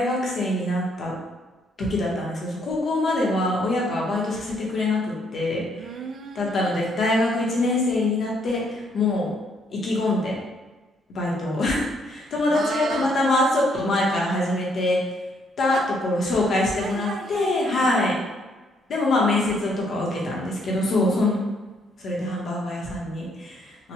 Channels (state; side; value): normal; both; correlation 0.70